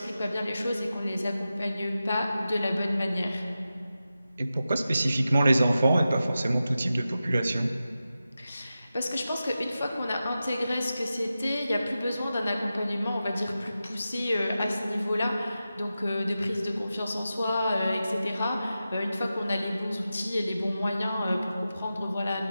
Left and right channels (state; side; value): inverted; both; correlation -0.92